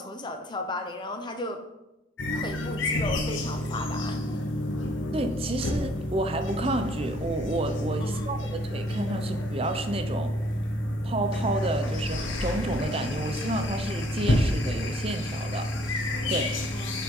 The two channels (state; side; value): normal; both; correlation 0.62